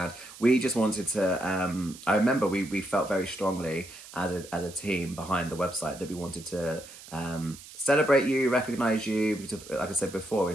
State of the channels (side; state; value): right; noise; hiss, 17 dB below the sound